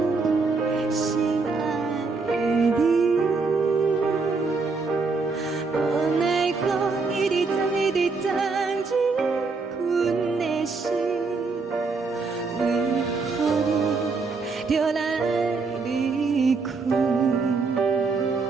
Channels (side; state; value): left; quieter; 4.3 dB